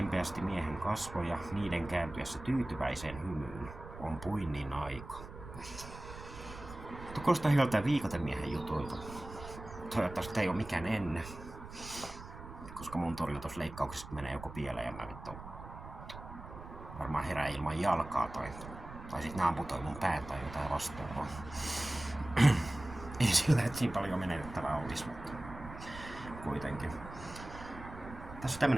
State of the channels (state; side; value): noise; right; rumble, 13 dB below the sound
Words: miehen kasvoja, niiden kääntyessä tyytyväiseen hymyyn. On puinnin aika. Kuulostaa hyvältä viikotemiehen jutuilta. Toivottavasti ei ole mikään ennen. Koska mun torjutusleikkauksesta menee joku pieleen ja mä vittu varmaan herää ilman jalkaa tai sit ne amputoi mun pään tai jotain vastaavaa. Ei sillä, että siinä paljon menetettävää olisi, mutta kuitenkin. Tässä on